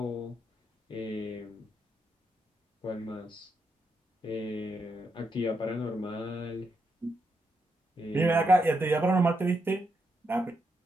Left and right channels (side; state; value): both; normal; correlation 0.82